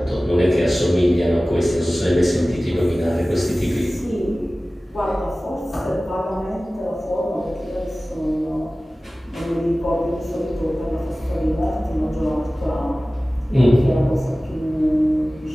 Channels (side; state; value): both; normal; correlation 0.97